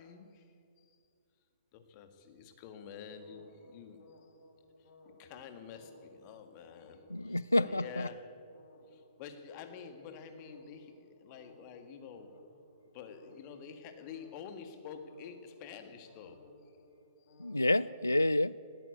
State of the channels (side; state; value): both; inverted; correlation -0.94